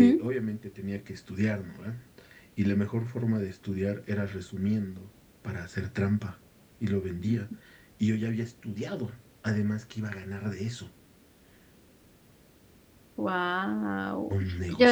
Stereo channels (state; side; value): identical; both; correlation 1.00